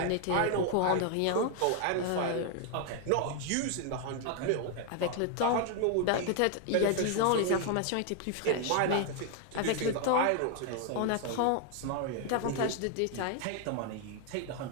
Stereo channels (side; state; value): both; different; correlation 0.00